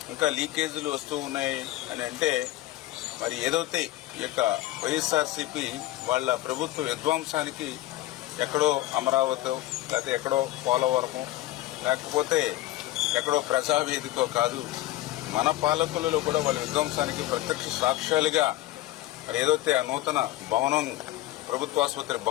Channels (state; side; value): quieter; right; 15.7 dB